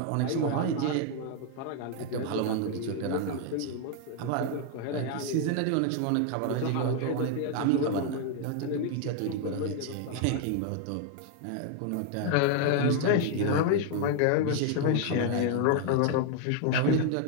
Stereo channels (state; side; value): different; both; correlation 0.01